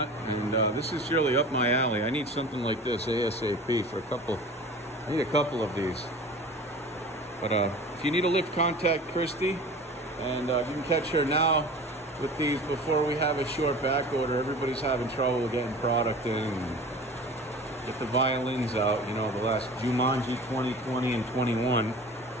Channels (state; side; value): normal; both; correlation 0.39